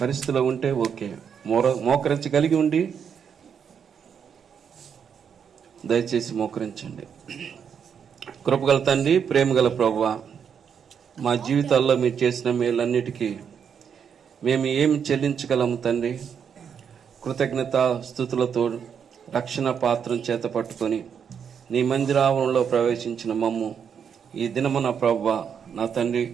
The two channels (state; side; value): quieter; left; 7.4 dB